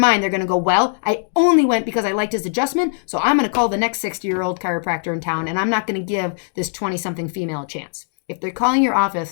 they're going to go, well, I only went because I liked his adjustment, so I'm going to call the next 60-year-old chiropractor in town, and I'm not going to give this 20-something female a chance. If they're calling your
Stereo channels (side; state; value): right; silent; digital silence